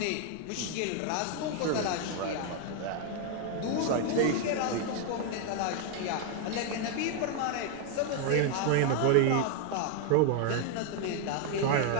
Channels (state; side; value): different; both; correlation 0.00